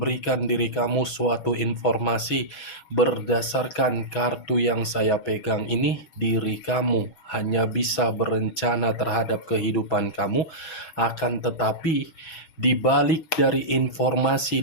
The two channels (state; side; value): late; right; 6.2 ms